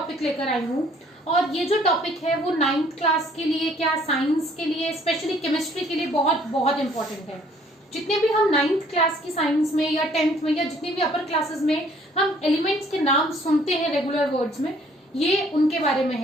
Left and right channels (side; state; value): both; normal; correlation 0.60